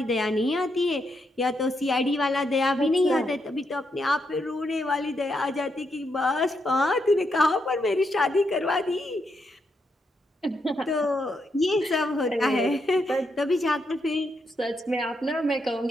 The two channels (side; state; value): both; normal; correlation 0.80